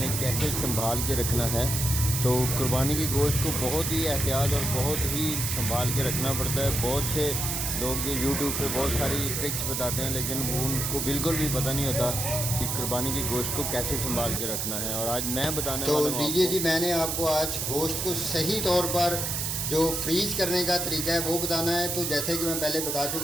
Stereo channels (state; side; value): noise; right; hiss, 1 dB below the sound